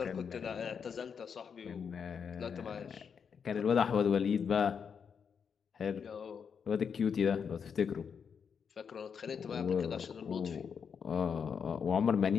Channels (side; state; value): right; quieter; 6.7 dB